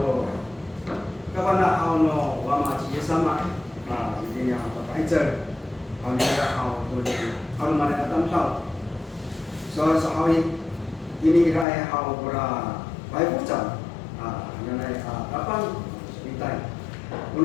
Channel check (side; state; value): right; drops out; at 11.7 s